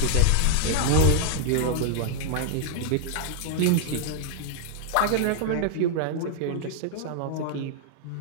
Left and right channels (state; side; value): different; both; correlation -0.01